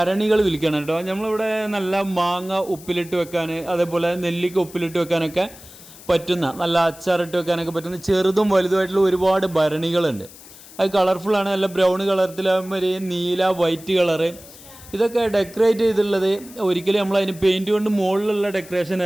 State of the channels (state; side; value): noise; left; hiss, 19 dB below the sound